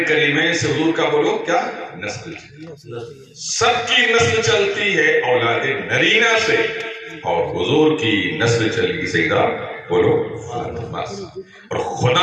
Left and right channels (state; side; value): identical; both; correlation 1.00